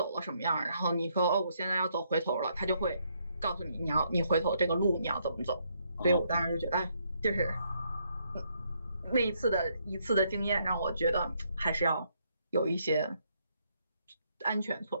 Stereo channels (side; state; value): both; inverted; correlation -0.73